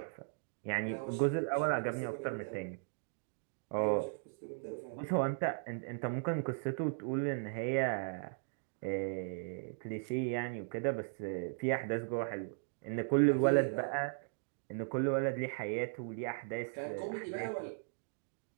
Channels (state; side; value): silent; left; digital silence